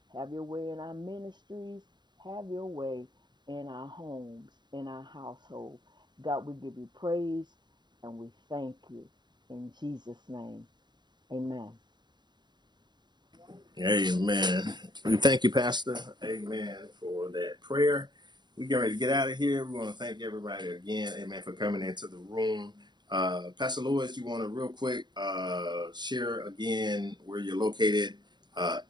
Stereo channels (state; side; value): late; left; 0.21 ms